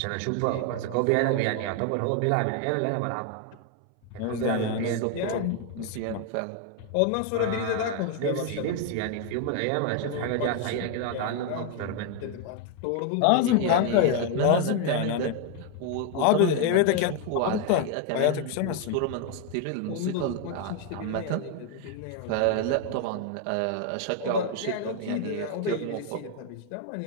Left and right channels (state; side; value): different; both; correlation 0.00